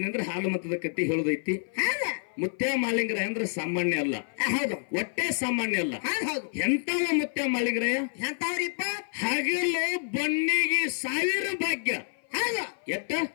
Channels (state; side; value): silent; right; 55 dB below the other